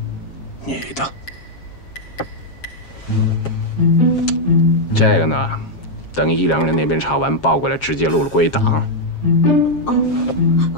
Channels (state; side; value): late; right; 7.4 ms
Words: 女的。这个呢，等1、2人那边查完报过来，直接录了归档。